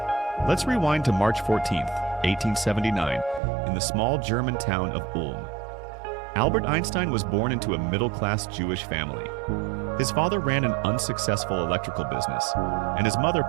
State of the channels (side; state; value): left; drops out; at 3.4 s